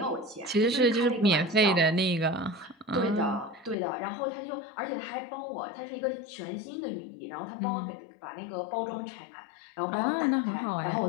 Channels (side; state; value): right; drops out; at 3.8 s